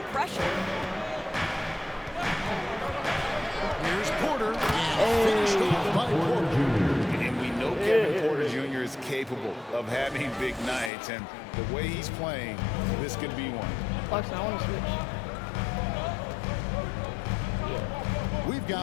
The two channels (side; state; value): right; drops out; at 10.9 s